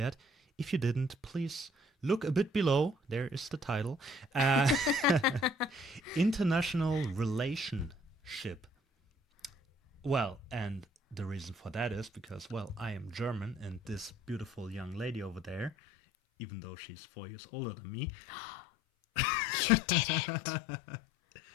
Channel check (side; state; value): right; drops out; at 15.7 s